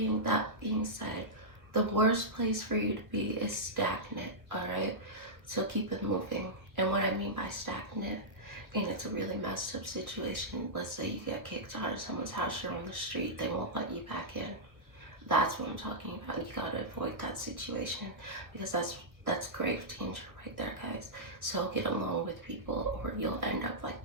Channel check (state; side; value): late; left; 1.2 ms